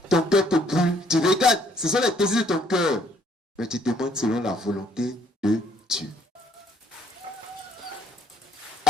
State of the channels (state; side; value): normal; both; correlation 0.65